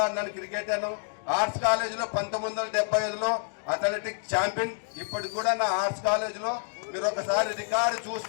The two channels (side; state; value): right; silent; digital silence